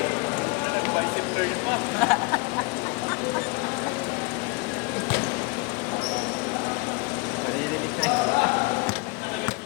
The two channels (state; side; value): quieter; right; 27.7 dB